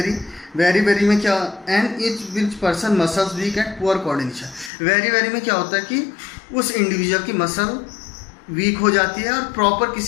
very में क्या, and each which person muscles weak and poor coordination. Very में क्या होता है कि उस इंडिविजुअल की मसल वीक हो जाती है और प्रॉपर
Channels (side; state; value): right; drops out; at 4.7 s